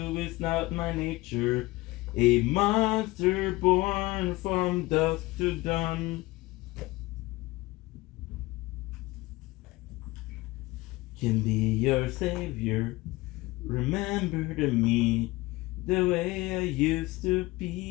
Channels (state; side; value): quieter; right; 20.7 dB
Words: it's not my nature. A monster born from dusk to dawn. Can be your savior. Remember to me the way I used to